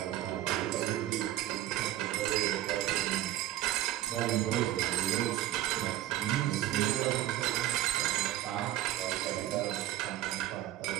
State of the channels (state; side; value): quieter; left; 14.0 dB